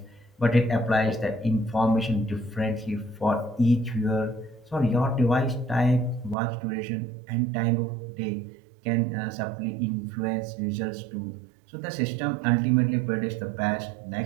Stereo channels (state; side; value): drops out; left; at 6.4 s